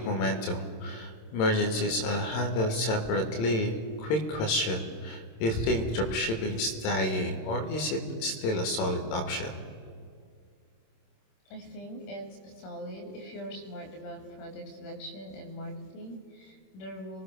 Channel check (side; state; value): right; late; 26 ms